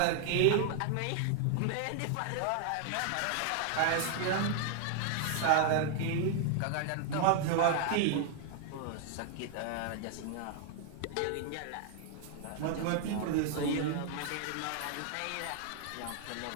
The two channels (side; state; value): both; different; correlation 0.00